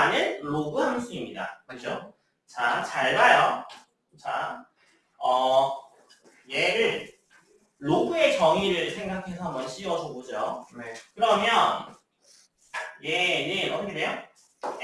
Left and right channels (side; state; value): both; identical; correlation 1.00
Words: 로그 함수입니다. 그죠? 자, 잘 봐요. 자, 얘를 로그의 정의를 생각해서 한번 씌워줘 보죠. 네. 그러면 얘는 어떻게 돼요?